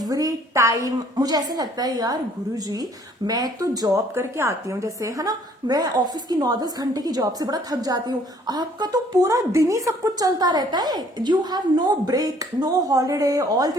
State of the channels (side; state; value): both; normal; correlation 0.59